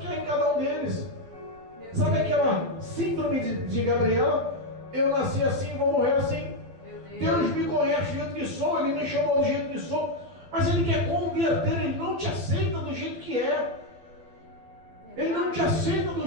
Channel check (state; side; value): late; left; 12 ms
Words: há em cada um deles. Sabe aquela síndrome de Gabriela? Eu nasci assim, vou morrer assim. Deus me conhece do jeito que sou, Ele me chamou do jeito que sou, mas Ele quer converter, Ele não te aceita do jeito que é. Ele não te aceita